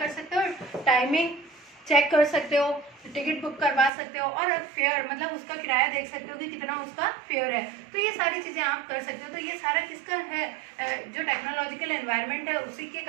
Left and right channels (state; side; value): drops out; left; at 3.9 s